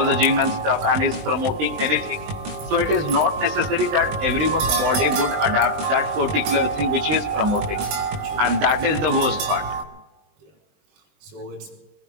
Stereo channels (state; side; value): late; left; 20 ms